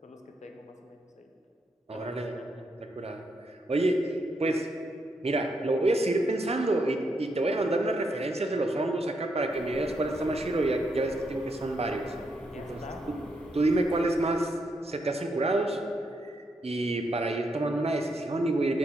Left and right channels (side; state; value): both; normal; correlation 0.79